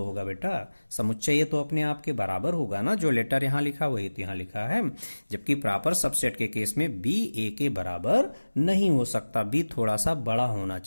होगा बेटा। समुच्चय ए तो अपने आप के बराबर होगा ना, जो लेटर यहां लिखा वही तो यहां लिखा है। जबकि प्रॉपर सबसेट के केस में बी ए के बराबर नहीं हो सकता, बी थोड़ा सा बड़ा होना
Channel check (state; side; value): inverted; both; correlation -1.00